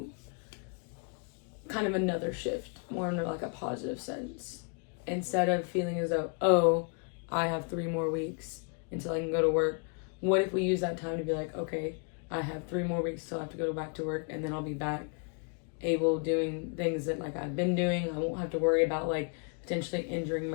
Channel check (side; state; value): right; quieter; 38.1 dB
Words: kind of another shift, more in like a positive sense? Instead of feeling as though, oh, I have 3 more weeks until I can go to work, what if we use that time to be like, okay, I have 3 more weeks till I have to go back to work, and then I'll be back able doing things that like I've been doing. I won't have to worry about like potentially injuring